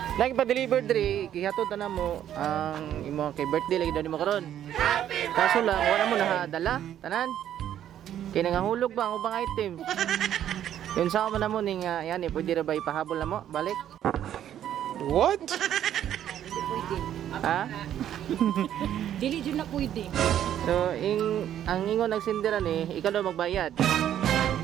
lagi pa-deliver diri, kihatod na mo ang imong kay birthday lagi daw nimo karon. Kaso lang, wala mo nahadala, tanan. Kaya nangahulog ba ang ubang item? Yun sa mo na mo ning yan eh, pwede ra ba ipahabol na mo? Balik. What? Ha? Dili jud na pwede. So, ang ingon nagsindiran eh, ikaw daw magbayad.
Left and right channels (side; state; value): left; quieter; 10.8 dB